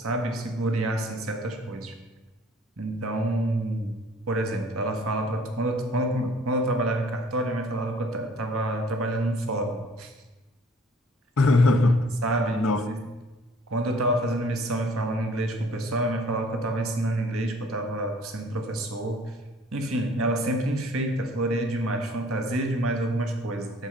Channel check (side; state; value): both; normal; correlation 0.55